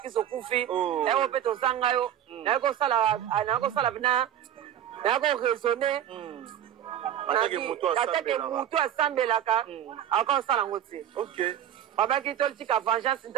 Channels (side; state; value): left; quieter; 10.8 dB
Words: kufi eko mpe tozanga yo nakosala bina nakoraisonne atake mutu asambelaka akosala yango te babaki totika vengeance